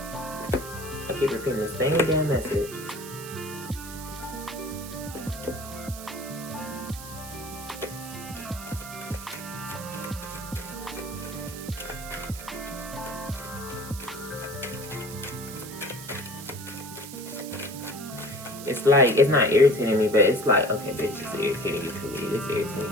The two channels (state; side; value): noise; right; hiss, 12 dB below the sound